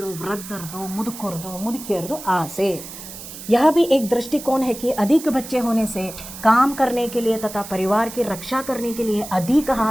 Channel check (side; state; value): right; noise; hiss, 13 dB below the sound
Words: ವೃದ್ಧರದು, ಮುದುಕಿಯರದು ಆಸೆ. यह भी एक दृष्टिकोण है कि अधिक बच्चे होने से काम करने के लिए तथा परिवार की रक्षा करने के लिए अधिक